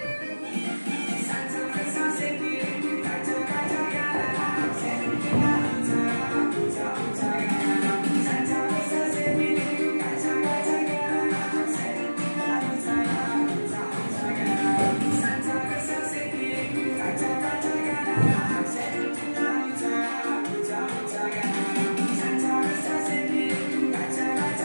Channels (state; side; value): inverted; both; correlation -1.00